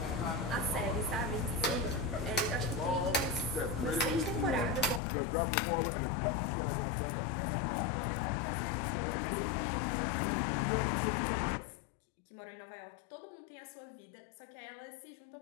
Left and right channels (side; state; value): right; drops out; at 5.0 s